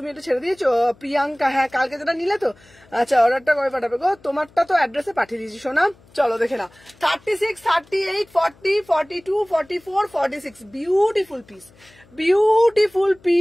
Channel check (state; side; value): noise; left; hum, 28 dB below the sound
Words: এটা ছেড়ে দিয়েছো প্রিয়াঙ্কা? হ্যাঁ কালকে যেটা নিলে তো। আচ্ছা অর্ডারটা কবে পাঠাবে গো? তোমারটা তো অ্যাড্রেসে পাঠিয়ে দিয়েছি সোনা, চলো দেখে নাও। 36, 38, 40, 42, 44, 46 বিউটিফুল পিস, বিউটিফুল